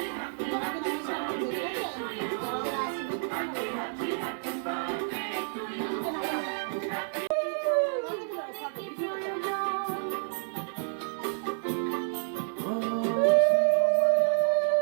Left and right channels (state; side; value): silent; left; 58 dB below the other